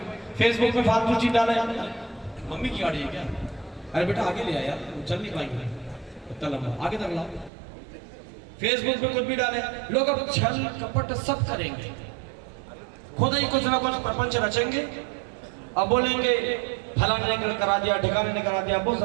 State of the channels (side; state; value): left; drops out; at 7.5 s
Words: फेसबुक में फालतू चीज डाले। मम्मी की गाड़ी है क्या? अरे बेटा आगे ले आ यार, चल नहीं पाएंगे, इतना लंबा आगे तक लाओ। फेसबुक पे कुछ भी डाले, लोग अब छल कपट सब करेंगे, खुद ही कुछ ना कुछ प्रपंच रचेंगे। अब बोलेंगे फलाने ने करा दिया, ठिकाने ने करा दिया, वो